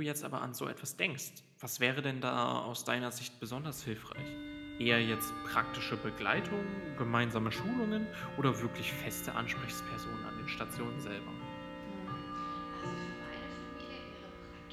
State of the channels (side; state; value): both; identical; correlation 1.00